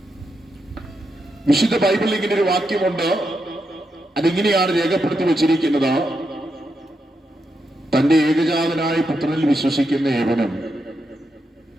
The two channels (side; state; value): both; normal; correlation 0.84